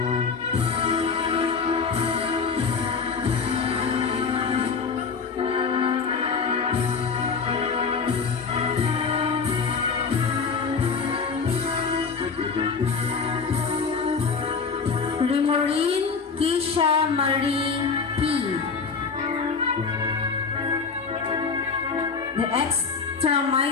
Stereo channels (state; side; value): quieter; right; 5.2 dB